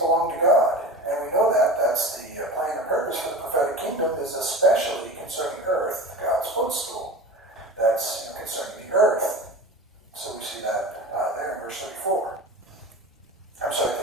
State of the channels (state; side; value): normal; both; correlation 0.32